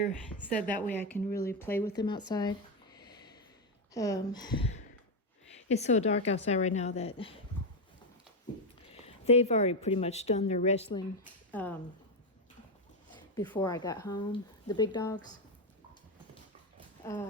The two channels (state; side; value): normal; both; correlation 0.07